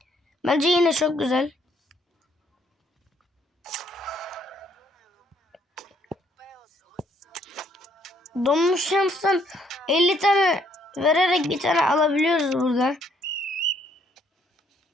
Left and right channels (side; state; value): both; normal; correlation 0.67